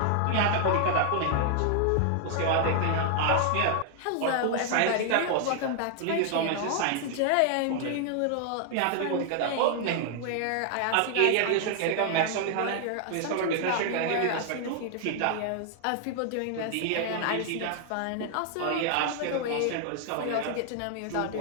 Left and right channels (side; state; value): both; different; correlation 0.00